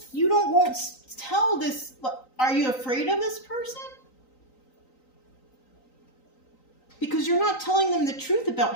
won't tell this. Are you afraid of this person? Because you're not telling them the truth about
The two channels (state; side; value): late; right; 3.9 ms